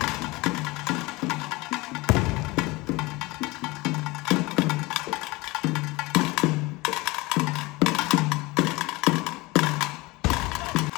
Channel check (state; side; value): quieter; right; 22.7 dB